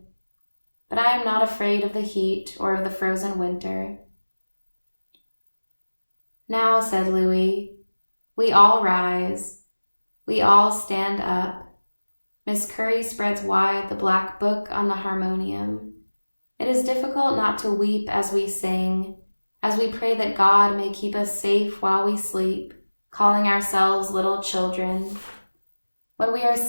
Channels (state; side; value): inverted; both; correlation -1.00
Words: But I am not afraid of the heat or of the frozen winter. Now, said Louis, we all rise. We all stand up. Miss Curry spreads wide the black book on the harmonium. It is difficult not to weep as we sing, as we pray that God may keep us safe while we sleep, calling ourselves little children. When we are